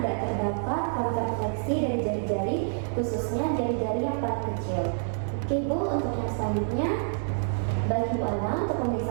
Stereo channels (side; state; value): left; silent; digital silence